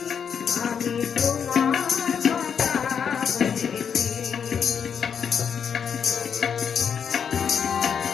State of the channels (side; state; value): right; quieter; 7.3 dB